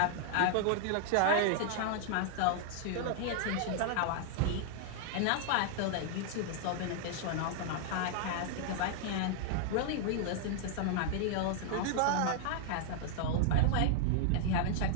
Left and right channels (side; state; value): both; different; correlation -0.01